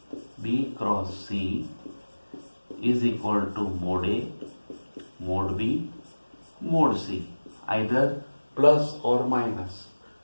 b cross c is equal to mod a, mod b, mod c. Either plus or minus.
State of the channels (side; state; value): both; inverted; correlation -1.00